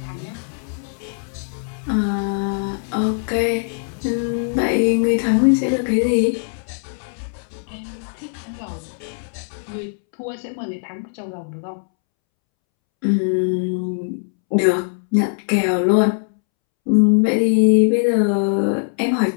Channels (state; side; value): silent; right; 65 dB below the other